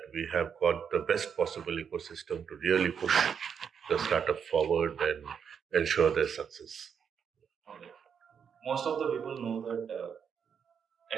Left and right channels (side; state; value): left; quieter; 7.2 dB